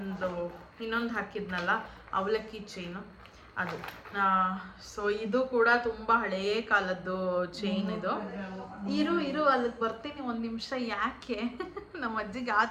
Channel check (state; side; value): identical; both; correlation 1.00